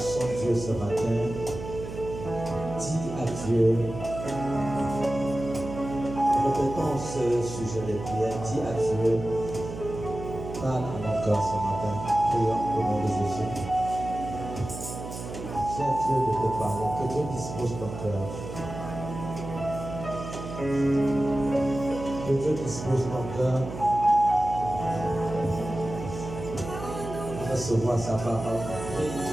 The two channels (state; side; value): noise; right; hum, 9 dB below the sound